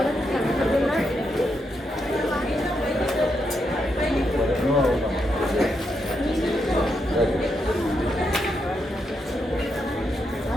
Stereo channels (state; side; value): normal; both; correlation 0.82